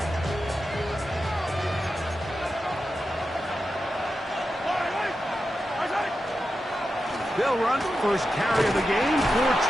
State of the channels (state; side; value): normal; both; correlation 0.90